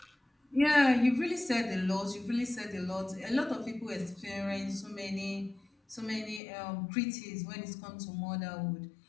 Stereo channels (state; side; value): drops out; right; at 6.4 s